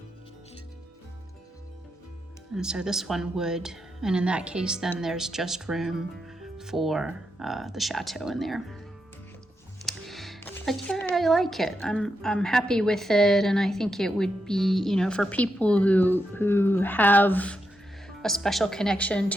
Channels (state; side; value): normal; both; correlation 0.84